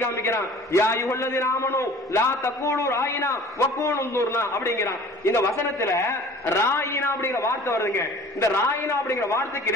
காமிக்கிறான், யா அய்யுஹல்லதீன ஆமனூ லா தகூலு ராயினா வகூலு உன்துர்னா அப்படிங்கறான். இந்த வசனத்துல ராயினா அப்படிங்கிற வார்த்தை வருதுங்க. இந்த ராயினா அப்படிங்கிற வார்த்தைக்கு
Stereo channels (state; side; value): normal; both; correlation 0.46